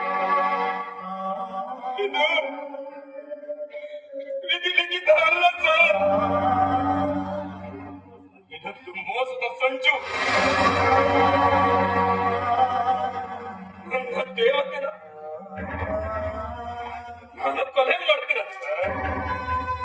ಇದು ವಿಧಿಲಿಖಿತ ಅಲ್ಲ ಸರ್. ಇದೊಂದು ಮೋಸದ ಸಂಚು. ನನ್ನ ದೇವತೆನ ನಾನು ಕೊಲೆ ಮಾಡ್ತೀರ ಸರ್?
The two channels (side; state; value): both; identical; correlation 1.00